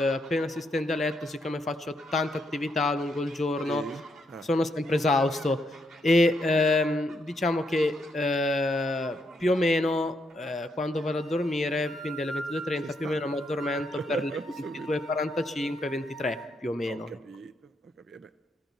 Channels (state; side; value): normal; both; correlation 0.77